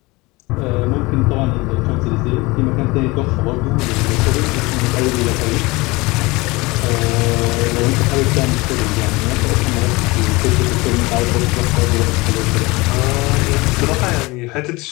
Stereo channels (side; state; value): right; quieter; 23.2 dB